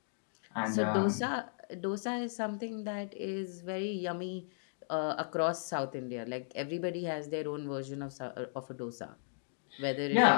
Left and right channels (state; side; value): silent; right; digital silence